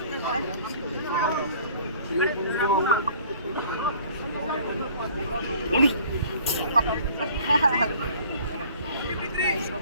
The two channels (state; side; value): inverted; both; correlation -0.52